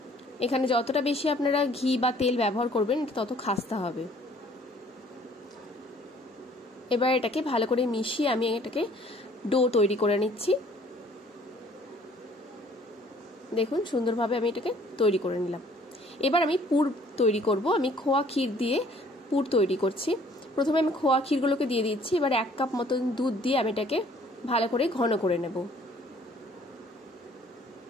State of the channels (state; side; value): normal; both; correlation 0.57